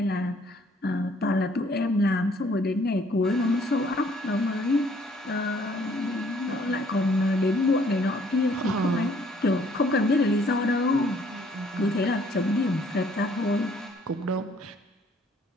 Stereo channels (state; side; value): normal; both; correlation 0.62